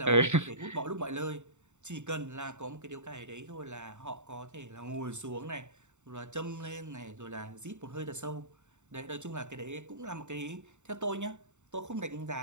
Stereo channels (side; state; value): left; late; 0.84 ms